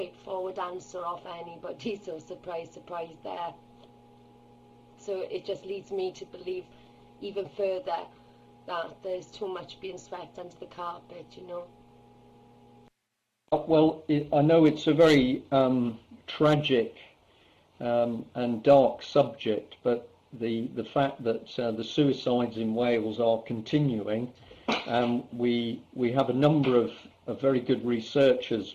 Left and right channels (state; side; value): identical; both; correlation 1.00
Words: answer off anybody, so surprise, surprise there. So it just leads me to believe even further that there's too much being swept under the carpet, you know. Well, I know it's a very tragic and dark subject, but the fact that the suicides in Wales are continuing, we have a number of very good researchers